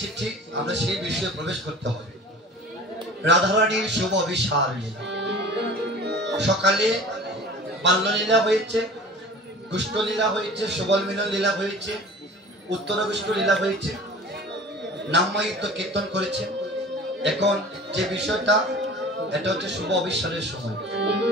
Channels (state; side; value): normal; both; correlation 0.41